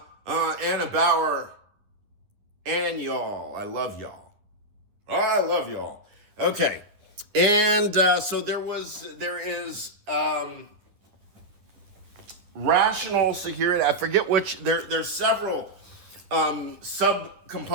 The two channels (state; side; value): late; left; 10 ms